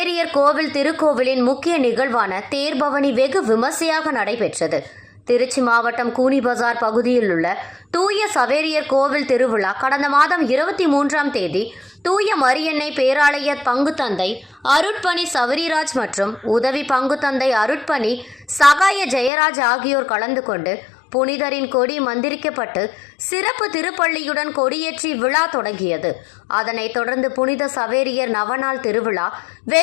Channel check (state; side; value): drops out; right; at 19.3 s